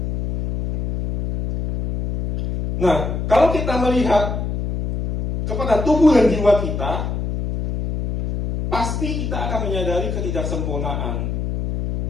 Nah, kalau kita melihat kepada tubuh dan jiwa kita, pasti kita akan menyadari ketidaksempurnaan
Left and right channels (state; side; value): noise; left; hum, 3 dB below the sound